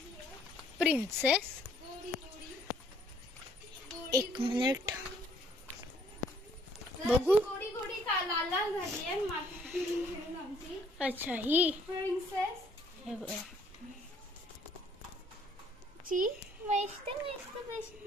प्रिन्सेस एक मिनिट बघू. गोडी गोडी का लाल लाल झाली आहे माती फिरून फिरून आमची अच्छा ही प्रिन्सेस हे बघा. ची मस्त मस्त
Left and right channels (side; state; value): both; normal; correlation 0.63